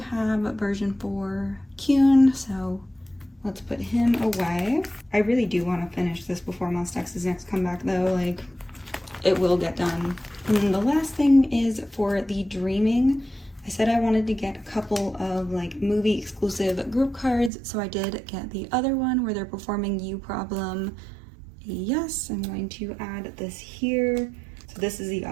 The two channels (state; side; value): drops out; left; at 17.5 s